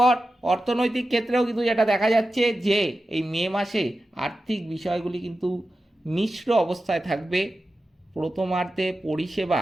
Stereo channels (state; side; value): normal; both; correlation 0.93